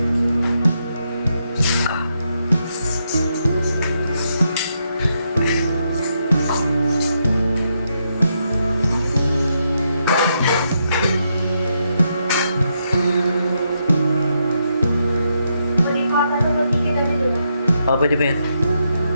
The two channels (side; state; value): both; inverted; correlation -0.80